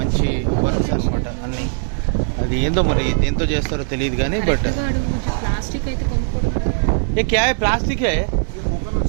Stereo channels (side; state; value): left; silent; 57 dB below the other